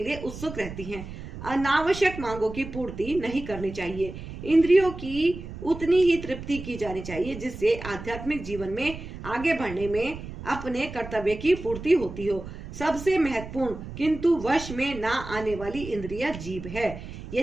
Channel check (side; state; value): right; noise; rumble, 11 dB below the sound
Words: लिए उत्सुक रहती हैं। अनावश्यक मांगों की पूर्ति नहीं करनी चाहिए। इंद्रियों की उतनी ही तृप्ति की जानी चाहिए जिससे आध्यात्मिक जीवन में आगे बढ़ने में अपने कर्तव्य की पूर्ति होती हो। सबसे महत्वपूर्ण किंतु वश में ना आने वाली इंद्रिया जीभ है।